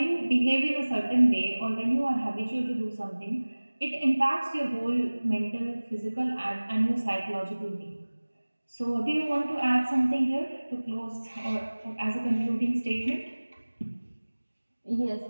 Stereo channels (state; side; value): inverted; both; correlation -1.00